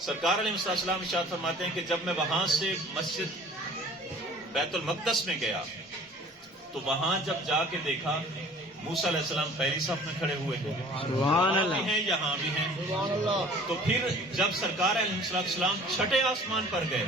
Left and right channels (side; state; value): both; normal; correlation 0.48